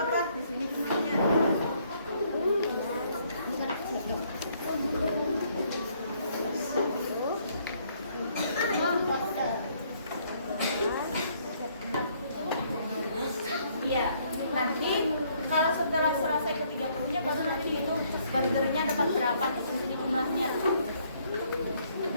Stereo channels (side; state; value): both; inverted; correlation -0.67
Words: di sini jumlahnya? Iya, nanti kalau setelah selesai ke 30-nya baru nanti hitung burgernya dapat berapa di sini jumlahnya.